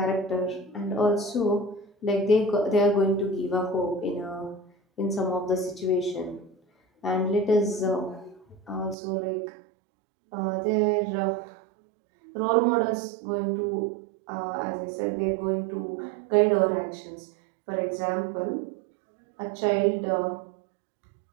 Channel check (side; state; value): left; drops out; at 9.0 s